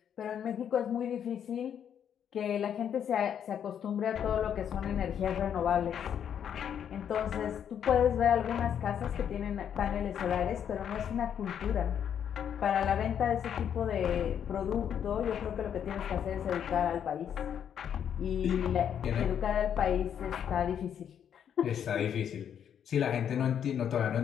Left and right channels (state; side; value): quieter; right; 8.8 dB